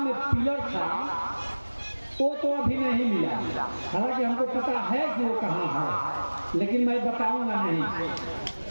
पिलर था वो तो अभी नहीं मिला, हालांकि हमको पता है कि वो कहाँ है, लेकिन मैं बताऊंगा नहीं,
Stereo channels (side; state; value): both; inverted; correlation -1.00